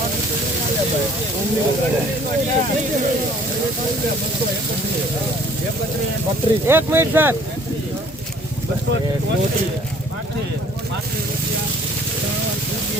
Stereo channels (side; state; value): both; normal; correlation 0.56